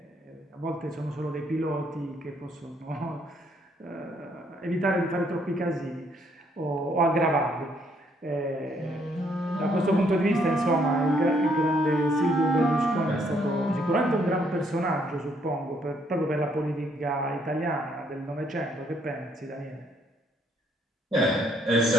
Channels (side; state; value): both; normal; correlation 0.69